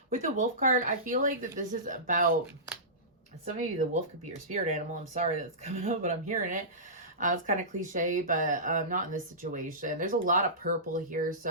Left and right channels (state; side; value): normal; both; correlation -0.20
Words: with the Wolf card, I feel like that this is about, some of you, the wolf could be your spirit animal. I'm sorry that's coming up, but I'm hearing it. It's kind of cliche, but not in this situation. There's a lot of purple here,